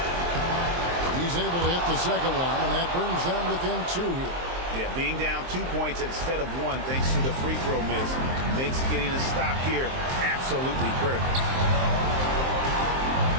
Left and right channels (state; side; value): late; left; 23 ms